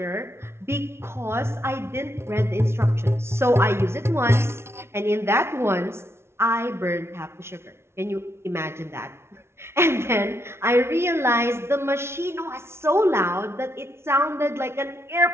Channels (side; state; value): left; late; 0.12 ms